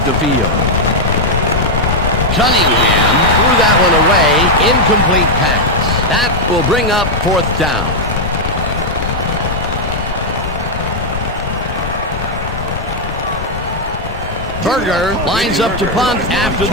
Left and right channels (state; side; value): normal; both; correlation -0.01